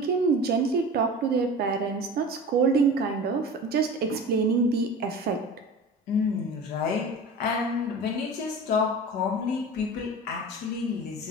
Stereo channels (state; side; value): normal; both; correlation 0.35